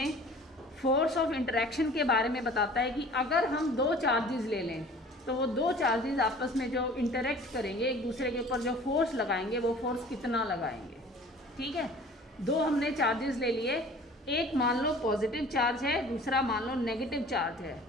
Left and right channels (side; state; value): both; normal; correlation 0.47